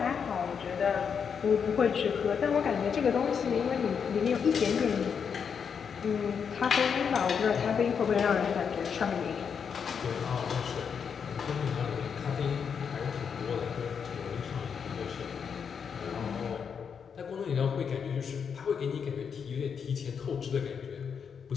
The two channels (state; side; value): quieter; right; 6.8 dB